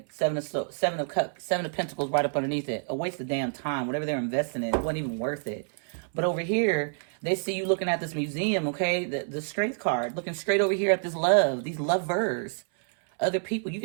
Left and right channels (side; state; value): left; silent; 59 dB below the other